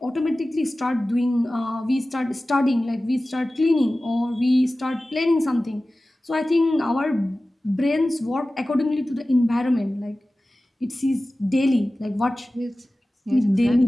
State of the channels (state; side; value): normal; both; correlation 0.96